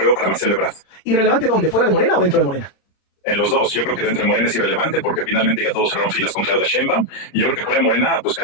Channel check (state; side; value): late; right; 31 ms